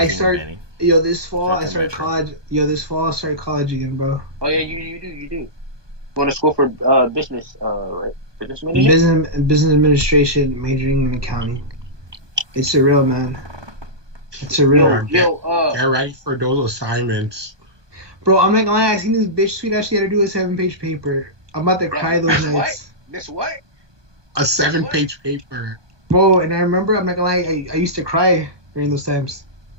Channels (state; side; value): late; left; 1.2 ms